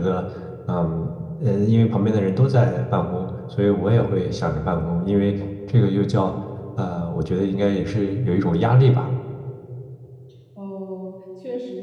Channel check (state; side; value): identical; both; correlation 1.00